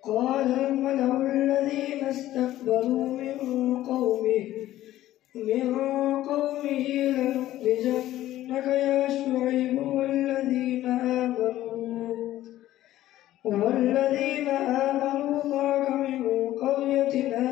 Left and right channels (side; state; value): right; quieter; 14.2 dB